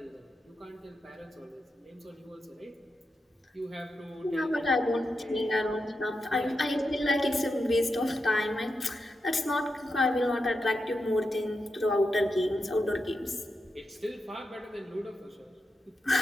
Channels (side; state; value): both; normal; correlation 0.87